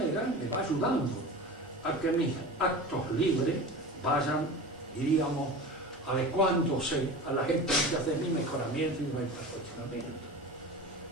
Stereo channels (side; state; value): both; normal; correlation 0.32